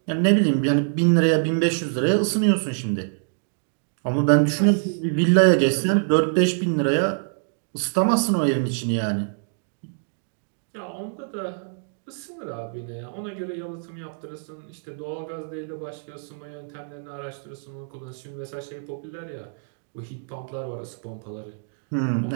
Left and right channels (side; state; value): left; silent; digital silence